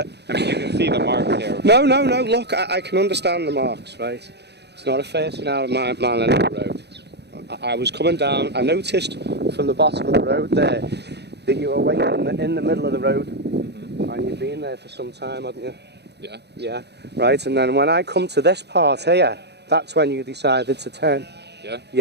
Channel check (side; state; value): left; late; 0.49 ms